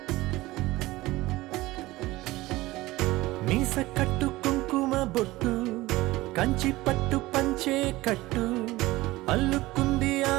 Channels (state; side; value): quieter; left; 19.0 dB